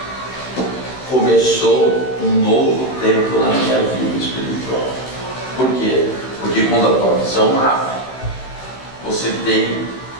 começou um novo tempo na minha vida espiritual. Por quê? Porque quando a tua visão abre, você tem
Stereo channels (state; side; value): late; right; 15 ms